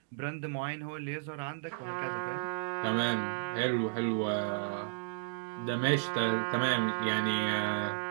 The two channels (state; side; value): silent; left; digital silence